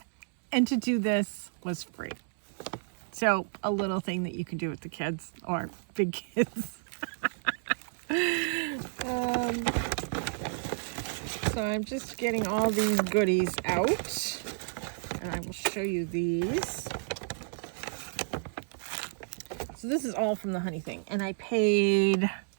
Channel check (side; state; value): left; silent; digital silence